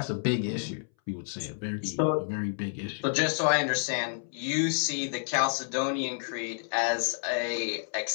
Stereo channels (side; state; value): right; silent; 58 dB below the other